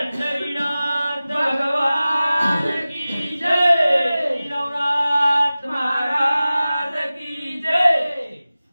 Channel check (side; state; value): both; inverted; correlation -0.97